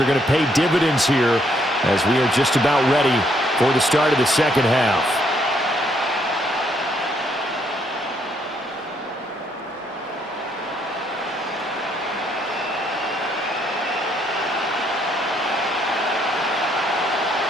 going to pay dividends here as we are just about ready for the start of the second half.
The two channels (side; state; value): both; normal; correlation 0.71